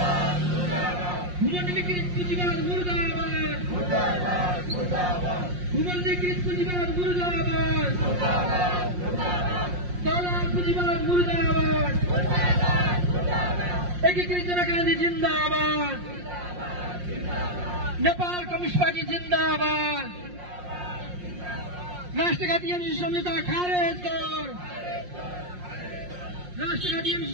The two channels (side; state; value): left; late; 5.6 ms